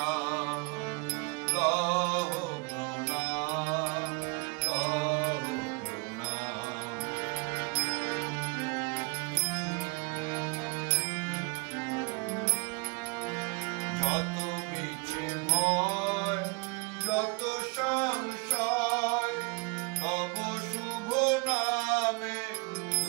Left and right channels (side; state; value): left; quieter; 29.6 dB